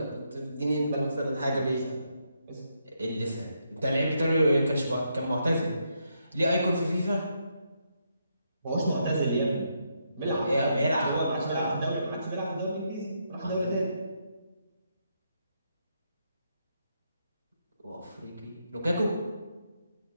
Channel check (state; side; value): inverted; both; correlation -0.79